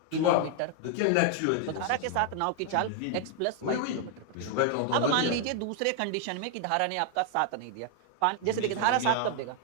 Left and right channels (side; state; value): both; different; correlation 0.00